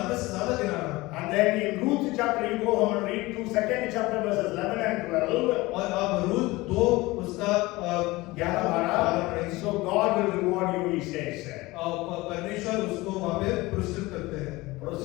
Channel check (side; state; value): right; quieter; 20.8 dB